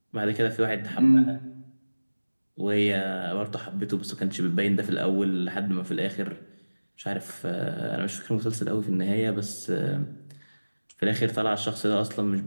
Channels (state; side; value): inverted; both; correlation -1.00